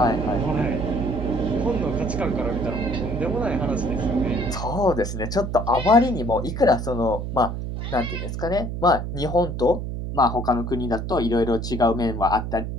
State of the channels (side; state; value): right; noise; hum, 5 dB below the sound